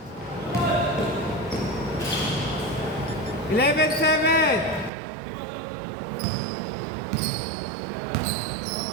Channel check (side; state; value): left; drops out; at 4.9 s